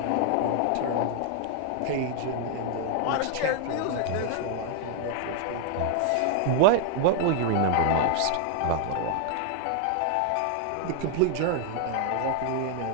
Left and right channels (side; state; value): both; different; correlation 0.00